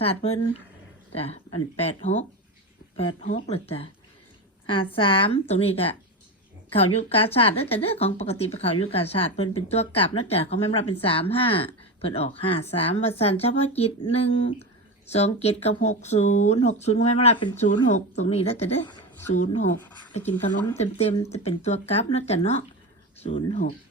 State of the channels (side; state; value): both; normal; correlation 0.20